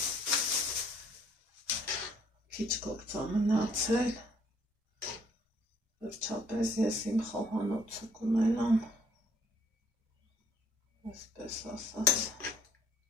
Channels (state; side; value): normal; both; correlation 0.62